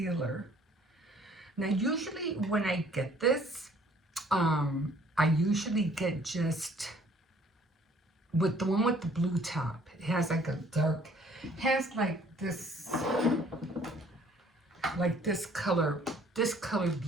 Now, usually when I get this, I usually get just with the one with the blue top. It has like a dark, it has like this color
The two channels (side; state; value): both; normal; correlation 0.58